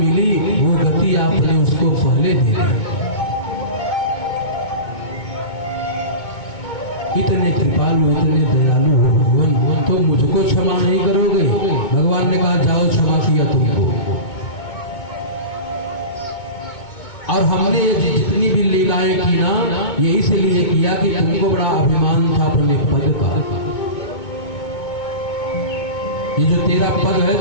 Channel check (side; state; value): right; late; 2.2 ms